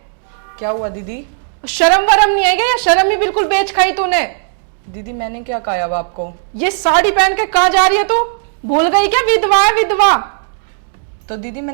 क्या हुआ दीदी? शर्म वरम नहीं है क्या? शर्म ही बिल्कुल बेच खाई तूने। दीदी मैंने क्या कहा अब आपको? ये साड़ी पहन के कहाँ जा रही है तू? भूल गई क्या विधवा है विधवा? तो दीदी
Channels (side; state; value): left; silent; digital silence